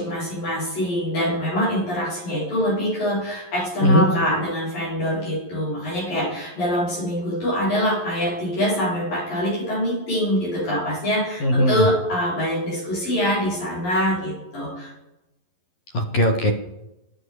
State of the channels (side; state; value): right; late; 11 ms